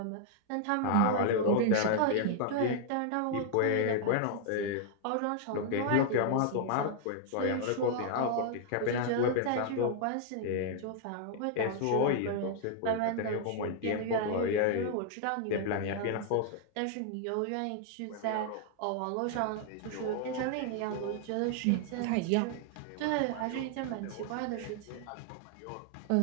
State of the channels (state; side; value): different; both; correlation 0.00